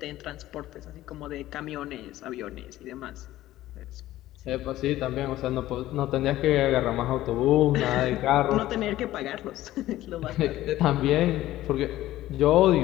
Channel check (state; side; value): quieter; right; 15.0 dB